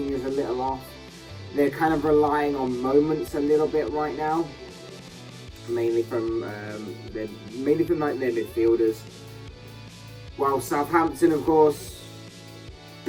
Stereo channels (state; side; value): identical; both; correlation 1.00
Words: is a little off. They're kind of relying on moments a little bit right now, mainly from their midfielders. While Southampton, of course,